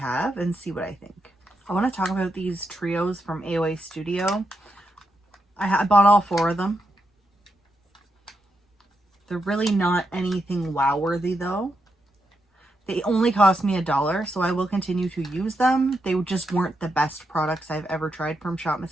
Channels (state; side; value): normal; both; correlation 0.84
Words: and see what I think. I want to talk about these trios from AOA Studio. I bought all 4 of them. They're really not anything wow-worthy though. They only cost me $1, so I will continue to use them. They just weren't the best products I've ever tried from Shop